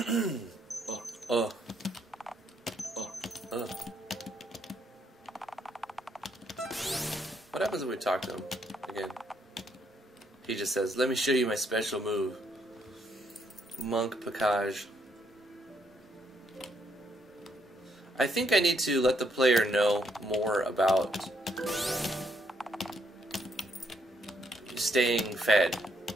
What happens if we talk to him again? He just says, let me show you my special move. Monk Package. I think I need to let the player know more about staying fed.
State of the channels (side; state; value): both; normal; correlation 0.73